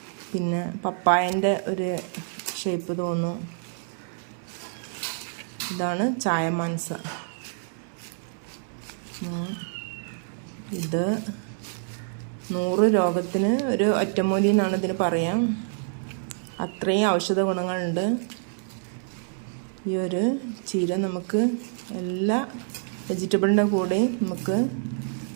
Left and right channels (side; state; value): left; silent; digital silence